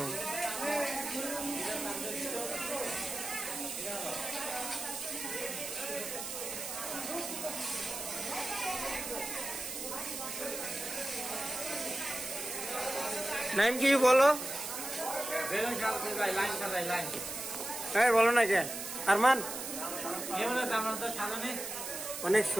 নাইম কি বলো? হ্যাঁ বলো না কে আরমান? অনেক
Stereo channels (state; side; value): noise; right; hiss, 6 dB below the sound